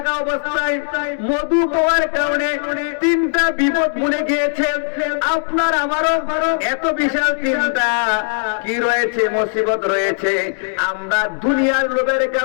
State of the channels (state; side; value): silent; right; digital silence